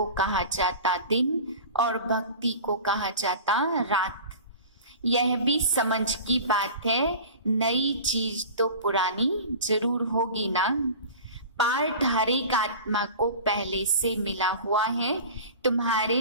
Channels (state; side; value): inverted; both; correlation -0.37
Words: कहा जाता दिन और भक्ति को कहा जाता रात। यह भी समझ की बात है, नई चीज तो पुरानी जरूर होगी ना। पार्ट हर एक आत्मा को पहले से मिला हुआ है।